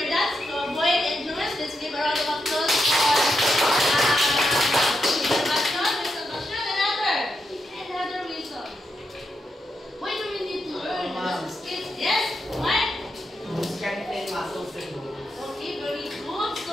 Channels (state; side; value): normal; both; correlation 0.84